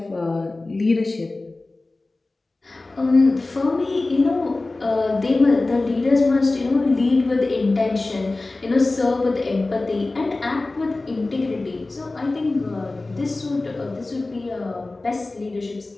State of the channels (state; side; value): quieter; right; 3.2 dB